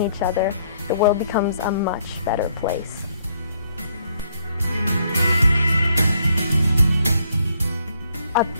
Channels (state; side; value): inverted; both; correlation -0.69